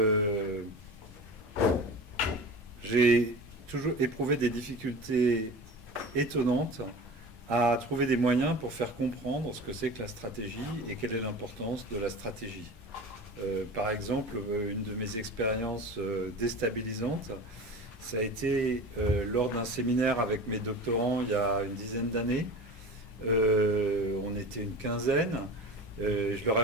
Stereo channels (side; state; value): both; normal; correlation 0.33